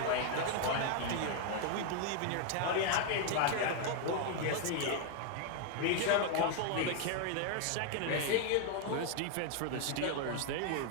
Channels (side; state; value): both; different; correlation 0.00